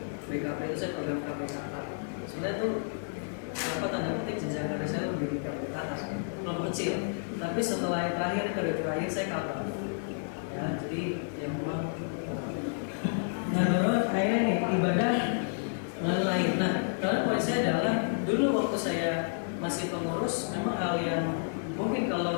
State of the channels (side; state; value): right; silent; digital silence